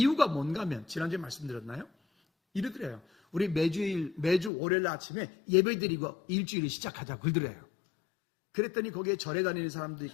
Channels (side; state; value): right; drops out; at 4.5 s